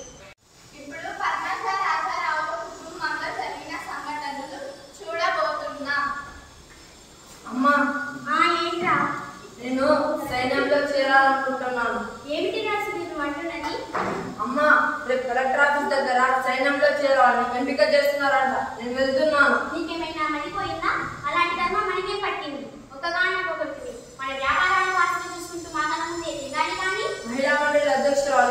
ఇప్పుడు పద్మజ రాజారావుల కుటుంబంలో జరిగిన సంఘటనలు చూడబోతున్నాం. అమ్మా, ఏంట్రా? నేను సైన్యంలో చేరాలనుకుంటున్నాను. ఏమిటి రాసు నేను అంటున్నది? అమ్మా, రేపు కలెక్టర్ ఆఫీస్ దగ్గర సైన్యంలో చేరాలని ఎంపిక చేస్తున్నారంట. నేను వెళ్తున్నాను. నీకేమైనా మడిపోయిందా? అలాంటి కర్మ మనకే పట్టింది. ఒకగానొకటి మన వ్యాపారాలు వాసన చూసుకుంటూ మాటల ముందే దిగాలి. కానీ మహిళా మండలి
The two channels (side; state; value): both; identical; correlation 1.00